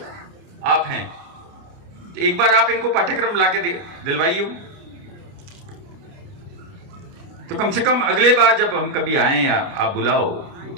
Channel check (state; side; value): late; left; 29 ms